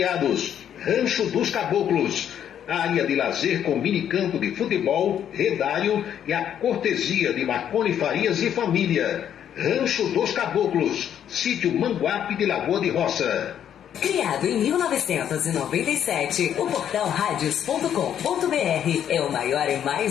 Rancho dos Caboclos. área de lazer com minicampo de futebol, redário e a cortesia de Marconi Farias e família. Rancho dos Caboclos, sítio Manguape de Lagoa de Roça. Criado em 1997, o portal radios.com.br é o maior e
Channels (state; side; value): quieter; right; 9.6 dB